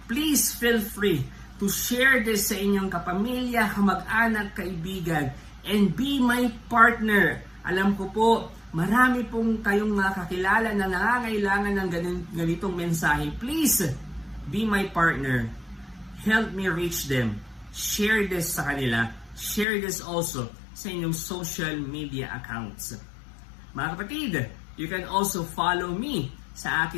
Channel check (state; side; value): drops out; right; at 19.7 s